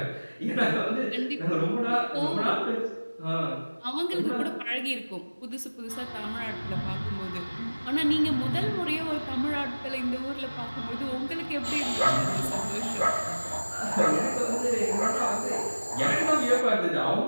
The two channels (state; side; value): inverted; both; correlation -1.00